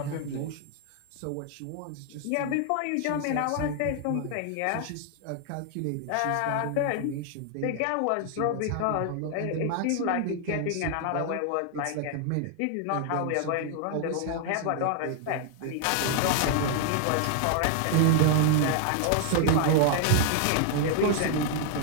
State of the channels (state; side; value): different; both; correlation 0.00